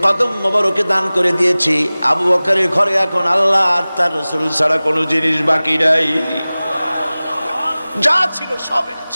কদম মোবারকে দান করে দিয়েছি। আবু বকরের ঘরে এখন আল্লাহ আর তার রাসূল ছাড়া কোনো জিনিস বাকি নাই। যা ছিল সব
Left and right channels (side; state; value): both; inverted; correlation -0.98